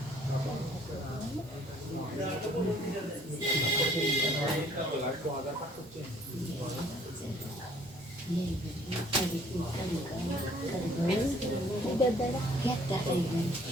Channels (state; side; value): normal; both; correlation 0.58